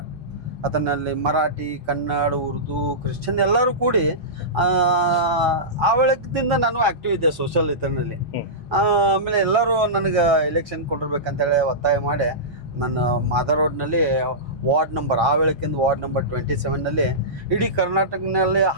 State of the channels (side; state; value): both; normal; correlation -0.17